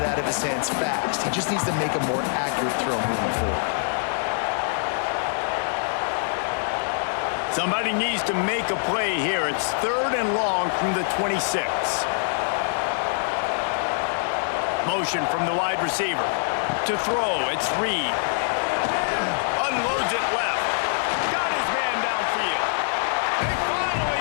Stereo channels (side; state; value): right; silent; digital silence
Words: out of his hands fast. He just needs to make a more accurate throw moving forward. Somebody needs to make a play here. It's 3rd and long from the 26. Motion from the wide receiver. To throw, it's Reed. Unloads it left. Got his man downfield. They